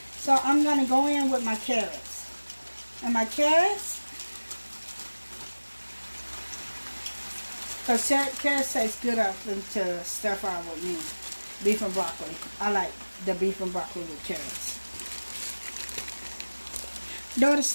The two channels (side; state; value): both; inverted; correlation -1.00